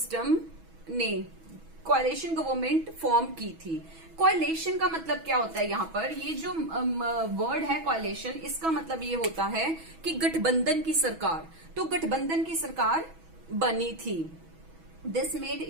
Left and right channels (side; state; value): left; late; 6.2 ms